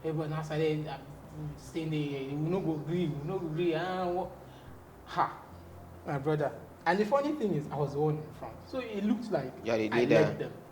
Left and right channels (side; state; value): both; identical; correlation 1.00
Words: Everyone now started saying, we no go green, we no go green. My brother. And the funny thing is, I was the one in front. So it looked like I led them.